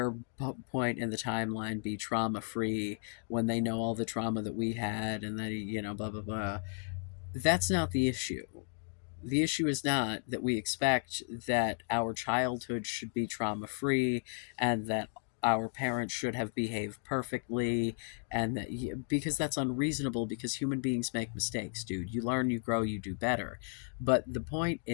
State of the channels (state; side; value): silent; right; 55 dB below the other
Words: point in the timeline be trauma free when they know all the trauma that we had, and that, blah blah blah. That's not the issue. The issue is not that we expect that our childhood should be trauma free, and that our parents should have behaved perfectly, and that, because that's unreasonable, because human beings make mistakes, dude. You learn, you grow, you do better. But the point